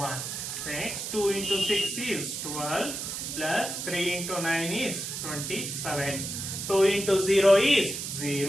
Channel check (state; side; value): noise; right; hiss, 5 dB below the sound